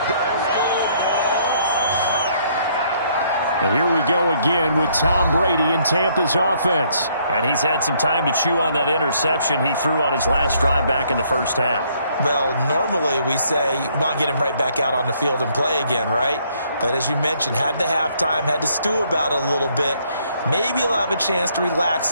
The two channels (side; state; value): both; inverted; correlation -0.67